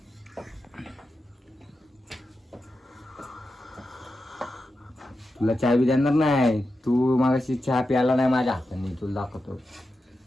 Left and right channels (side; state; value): both; normal; correlation 0.90